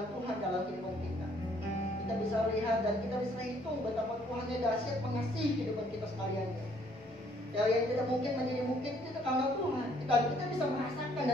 Tuhan dalam kehidupan kita. Kita bisa lihat dan kita bisa hitung betapa Tuhannya dahsyat mengasihi kehidupan kita sekalian. Dari yang tidak mungkin menjadi mungkin itu karena Tuhan. Kita bisa merasakan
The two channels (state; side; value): normal; both; correlation 0.64